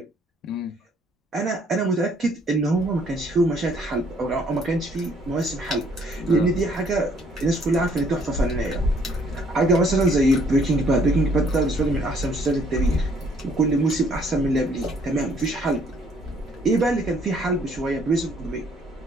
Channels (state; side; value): normal; both; correlation 0.63